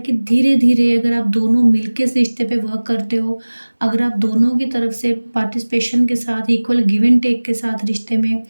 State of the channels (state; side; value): inverted; both; correlation -1.00